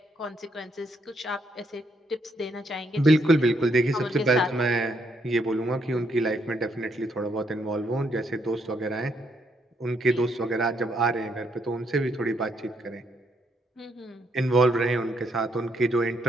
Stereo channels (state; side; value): normal; both; correlation 0.74